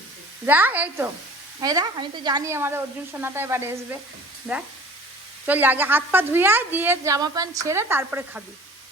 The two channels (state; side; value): normal; both; correlation 0.45